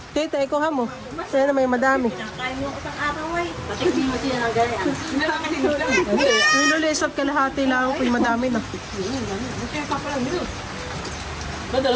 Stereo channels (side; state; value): both; identical; correlation 1.00